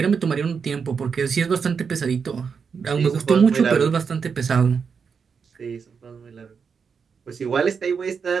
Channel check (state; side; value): quieter; left; 6.0 dB